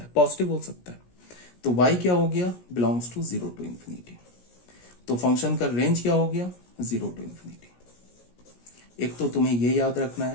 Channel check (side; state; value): right; late; 17 ms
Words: है पॉजिटिव हो सकता है। तो y क्या हो गया बिलोंग्स टू 0 टू इंफिनिटी। तो फंक्शन का रेंज क्या हो गया 0 टू इंफिनिटी। एक तो तुम्हें ये याद रखना